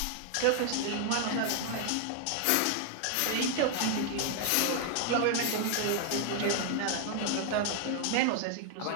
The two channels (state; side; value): different; both; correlation 0.00